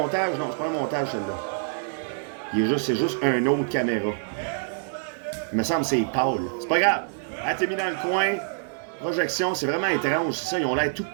Non, c'est pas un montage, celle-là. C'est juste un autre caméra. Il me semble que c'est Paul. C'est pas grave. Elle t'es mis dans le coin. Projection, c'est vraiment étrange. C'est ça, ils ont l'air tout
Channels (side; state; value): left; silent; 57 dB below the other